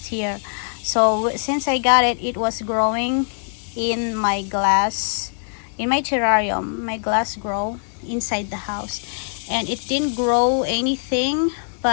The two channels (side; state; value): right; silent; digital silence